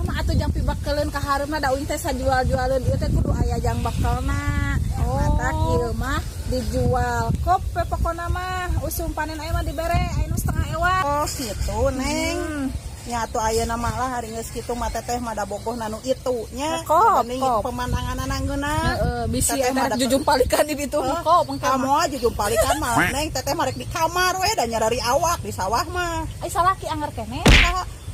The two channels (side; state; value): both; identical; correlation 1.00